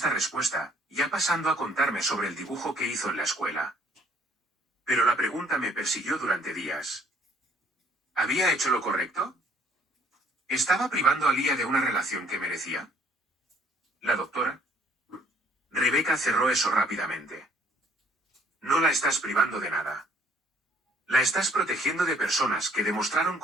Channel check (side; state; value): both; normal; correlation 0.62